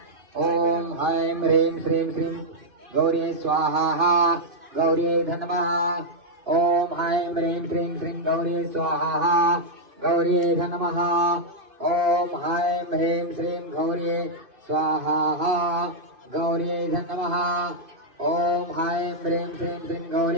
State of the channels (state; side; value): late; left; 2.5 ms